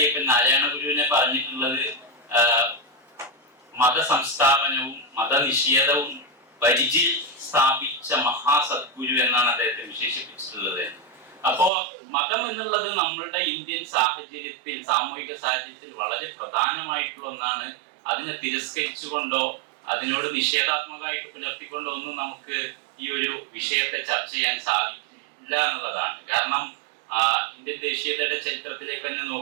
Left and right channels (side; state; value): left; drops out; at 11.7 s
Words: നാരായണ ഗുരുവിനെ പറഞ്ഞിട്ടുള്ളത് മതസംസ്ഥാപനവും മതനിഷേധവും പരിചിൽ സ്ഥാപിച്ച മഹാസദ്ഗുരു എന്നാണ് അദ്ദേഹത്തെ വിശേഷിപ്പിച്ചിട്ടുള്ളത്. അപ്പോ മതം എന്നുള്ളത് നമ്മളുടെ ഇന്ത്യൻ സാഹചര്യത്തിൽ, സാമൂഹിക സാഹചര്യത്തിൽ വളരെ പ്രധാനമായിട്ടുള്ള ഒന്നാണ്. അതിനെ തിരസ്കരിച്ചുകൊണ്ടോ അതിനോട് നിഷേധാത്മകമായിട്ട് പുലർത്തിക്കൊണ്ടോ ഒന്നും നമുക്ക് ഈ ഒരു വിഷയത്തെ ചർച്ച ചെയ്യാൻ സാധിക്കില്ല എന്നുള്ളതാണ്. കാരണം ഇന്ത്യൻ ദേശീയതയുടെ ചരിത്രത്തിലേക്ക് തന്നെ